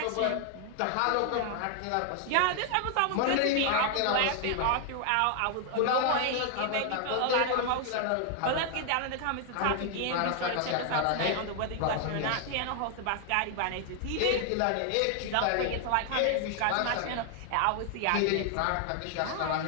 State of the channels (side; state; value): both; different; correlation 0.00